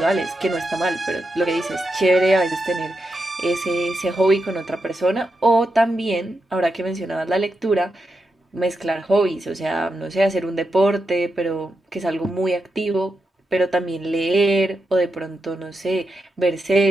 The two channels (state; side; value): normal; both; correlation 0.86